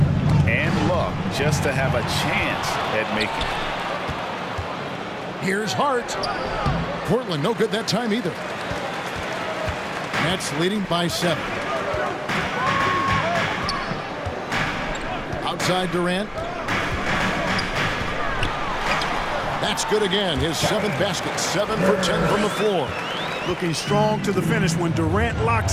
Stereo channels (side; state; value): both; identical; correlation 1.00